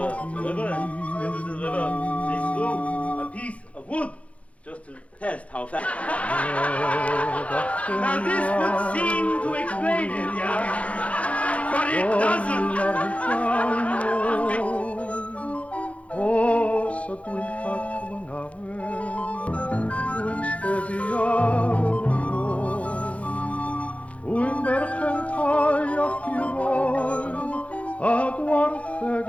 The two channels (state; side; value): late; right; 0.064 ms